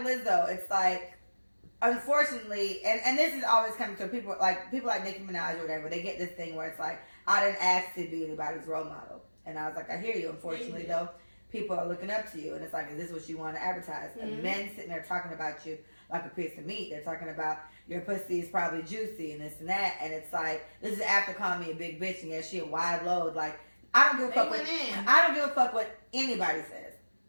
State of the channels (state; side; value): inverted; both; correlation -1.00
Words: it's like, unfortunately, and this is always coming to people like Nicki Minaj or whatever, they get this thing where it's like, I didn't ask to be anybody's role model. And I was like, I hear you. Unfortunately, though, people are looking up to you. And it's like, is this what you want to advertise? Mm-hmm. And men sitting there talking about you like a piece of meat. They're talking about your pussy is probably juicy and this and that. And it's like, this is after calling me a big bitch and yeah, she a wide load. Like, I don't give a fuck what anybody says.